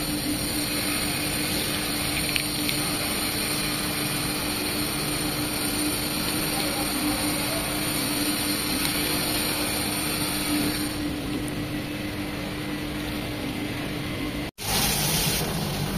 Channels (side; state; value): both; identical; correlation 1.00